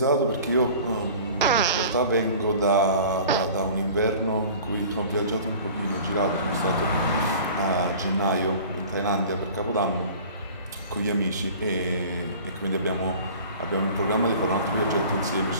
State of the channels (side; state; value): both; inverted; correlation -0.43